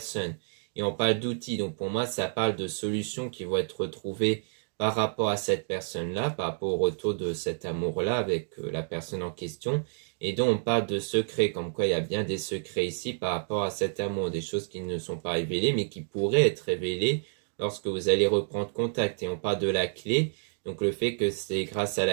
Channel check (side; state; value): left; silent; digital silence